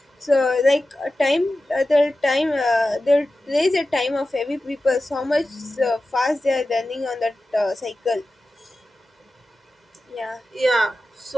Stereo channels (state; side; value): normal; both; correlation 0.94